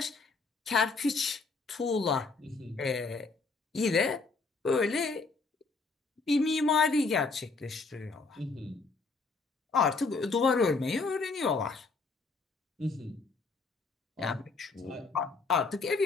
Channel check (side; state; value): right; quieter; 4.1 dB